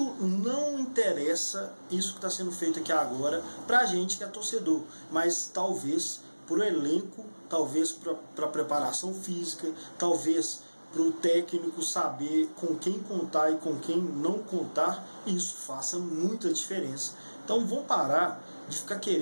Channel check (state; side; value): inverted; both; correlation -1.00